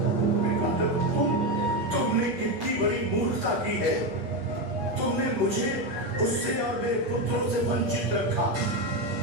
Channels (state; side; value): late; left; 8.3 ms